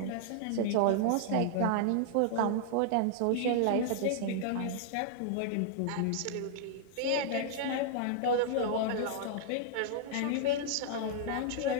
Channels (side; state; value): both; different; correlation -0.01